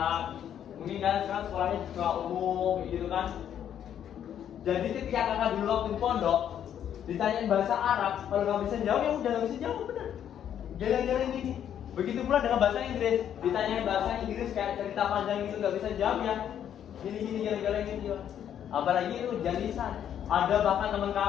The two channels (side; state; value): right; quieter; 9.7 dB